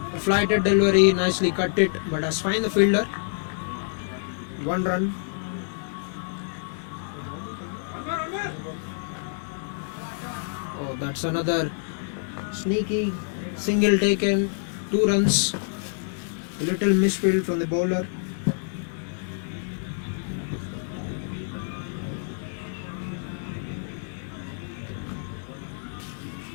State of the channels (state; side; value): silent; right; digital silence